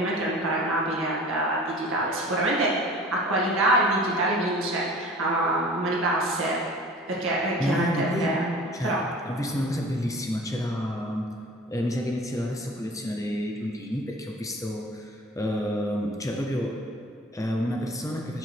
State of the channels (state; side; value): normal; both; correlation 0.43